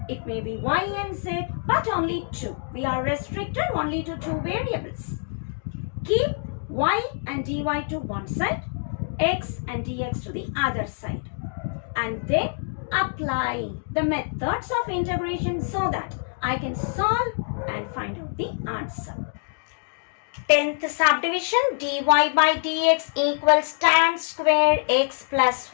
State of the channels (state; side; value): silent; right; digital silence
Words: it may be y and z, but only two. We are restricted only to two variables. Keep y and dy to one side, x and dx to the other side. And then apply the methods of integration so that I can solve and find out the answer. 10th subdivision, dy by dx equals tan square x plus